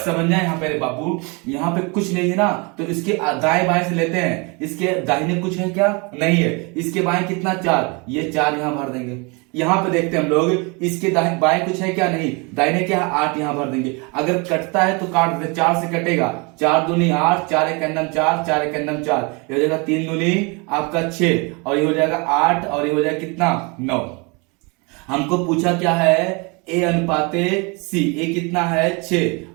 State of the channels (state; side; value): quieter; left; 29.9 dB